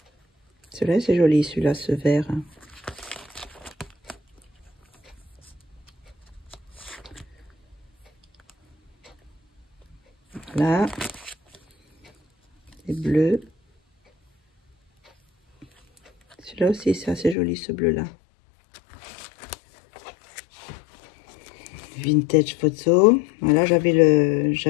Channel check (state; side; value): drops out; right; at 17.4 s